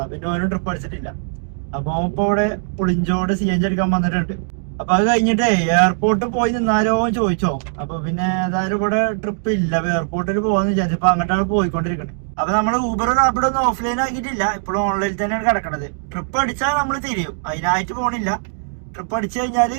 പിന്നെ ഓനും ട്രിപ്പ് അടിച്ചിട്ടില്ല. അപ്പൊ ഇപ്പൊ ഇവിടെ പുളിഞ്ചോട് CNG അടിക്കാൻ വന്നിട്ടുണ്ട്. അപ്പൊ അത് കഴിഞ്ഞിട്ട് എയർപോർട്ടിൽ പോയി നിന്നാലോ ചോദിച്ചോ. അപ്പൊ പിന്നെ ഏതായാലും ഇവിടെ ട്രിപ്പ് ഇല്ല, എയർപോർട്ടിൽ പോവാന്ന് വിചാരിച്ചപ്പോ അങ്ങോട്ടാണ് പോയിക്കൊണ്ടിരിക്കുന്നത്. അപ്പൊ നമ്മള് ഊബർ റാപ്പിഡോ ഒന്നും ഓഫ്ലൈൻ ആക്കിയിട്ടില്ല, ഇപ്പോഴും ഓൺലൈനിൽ തന്നെയാണ് കിടക്കണത്. ട്രിപ്പ് അടിച്ചാൽ നമ്മൾ തിരിയും, അതിനായിട്ട് പോണില്ല. ട്രിപ്പ് അടിച്ചു കഴിഞ്ഞാല്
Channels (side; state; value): left; silent; digital silence